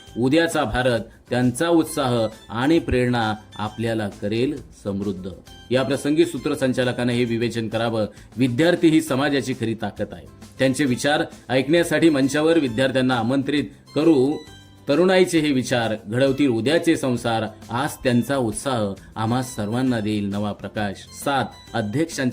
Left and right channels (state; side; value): identical; both; correlation 1.00